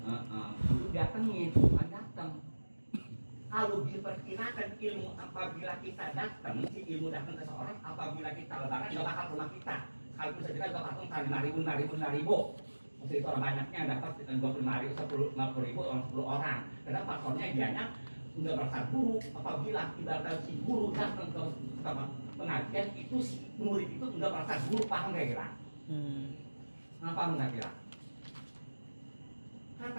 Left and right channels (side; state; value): both; inverted; correlation -1.00